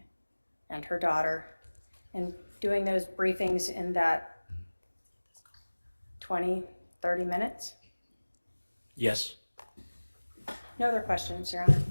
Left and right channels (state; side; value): inverted; both; correlation -1.00